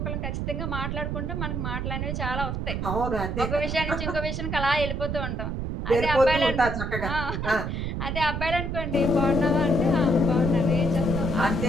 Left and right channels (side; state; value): right; noise; rumble, 2 dB below the sound